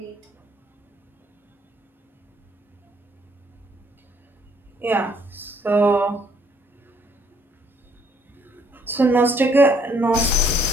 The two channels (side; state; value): both; normal; correlation 0.65